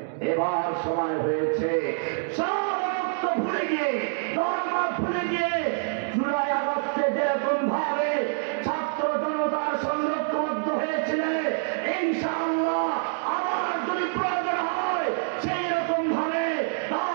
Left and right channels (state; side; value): silent; left; digital silence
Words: এবার সময় হয়েছে সব ঐক্য ভুলে গিয়ে, ধর্ম ভুলে গিয়ে, জুলাই আগস্টে যেরকম ভাবে ছাত্র জনতার সঙ্গে ঐক্যবদ্ধ হয়েছিল, ইনশাআল্লাহ আবার যদি প্রয়োজন হয় সেই রকম ভাবে